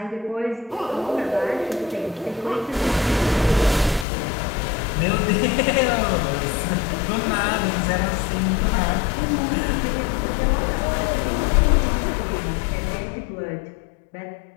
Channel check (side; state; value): right; drops out; at 4.0 s